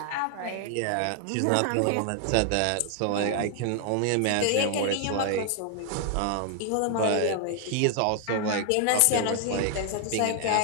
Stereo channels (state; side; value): different; both; correlation 0.00